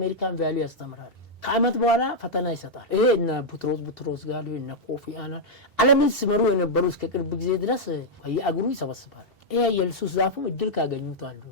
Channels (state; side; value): normal; both; correlation -0.04